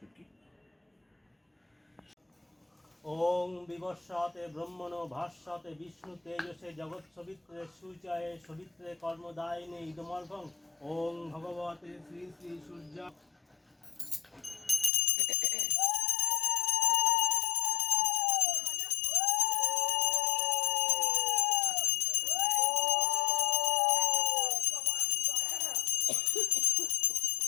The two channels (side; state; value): right; drops out; at 14.9 s